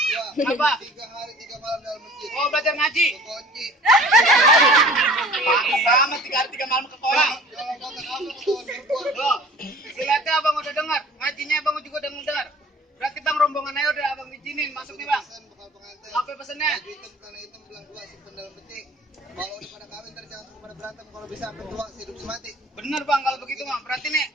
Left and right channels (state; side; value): normal; both; correlation 0.46